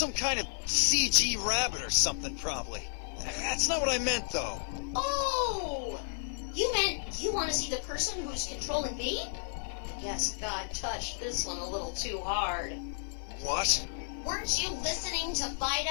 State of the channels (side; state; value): right; silent; 56 dB below the other